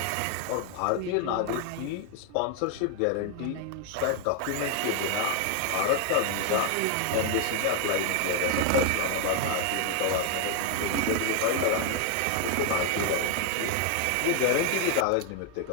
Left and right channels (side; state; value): both; different; correlation 0.01